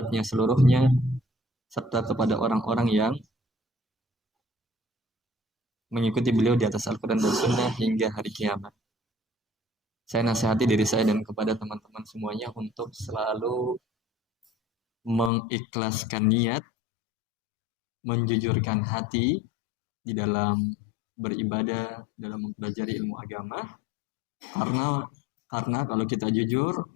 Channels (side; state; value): right; drops out; at 15.3 s